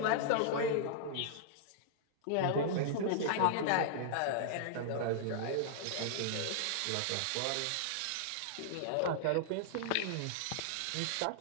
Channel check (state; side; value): different; both; correlation -0.01